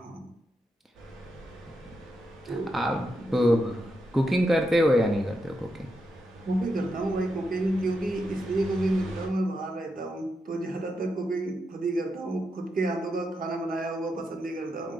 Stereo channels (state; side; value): normal; both; correlation 0.84